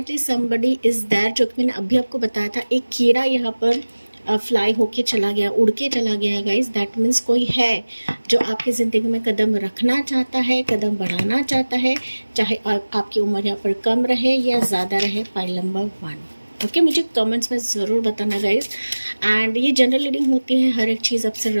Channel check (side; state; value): both; inverted; correlation -1.00